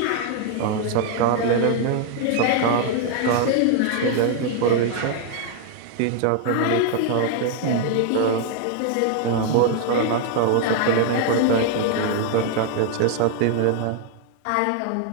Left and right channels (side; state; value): both; different; correlation 0.00